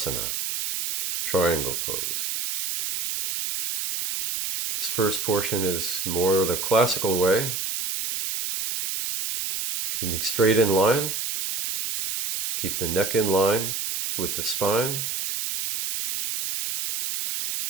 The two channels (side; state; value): right; noise; hiss, 3 dB below the sound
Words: triangle pose. This first portion is more the classical way, keeping straight in line, keep the neck in line with the spine.